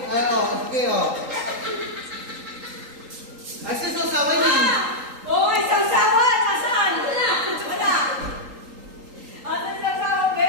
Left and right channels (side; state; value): left; late; 3.8 ms